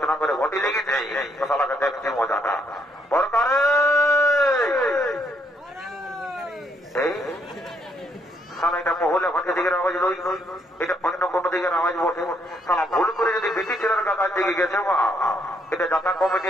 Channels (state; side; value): normal; both; correlation 0.72